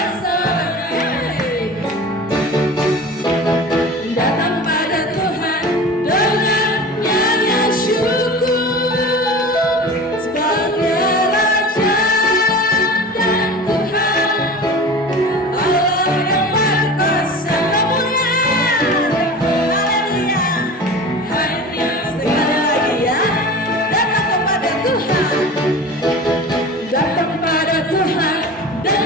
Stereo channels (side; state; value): both; normal; correlation 0.35